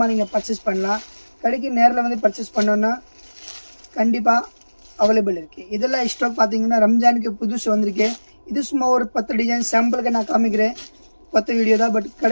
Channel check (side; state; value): both; inverted; correlation -1.00